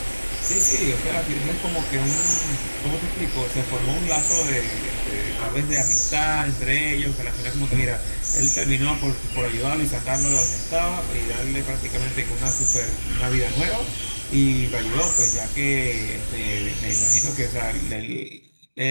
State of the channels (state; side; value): inverted; both; correlation -1.00